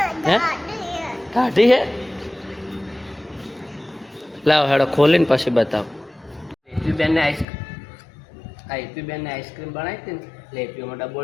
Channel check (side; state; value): right; drops out; at 7.5 s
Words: હે કાઢી હે? લાવો હેડો ખોલીને પછી બતાવો. હેતુબેનને આઈસ્ક્રીમ બનાવી હતી ને, એટલે હેતુમાં ડબ્બો